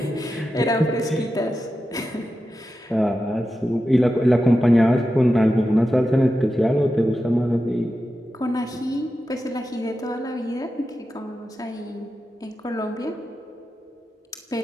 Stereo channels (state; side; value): normal; both; correlation 0.91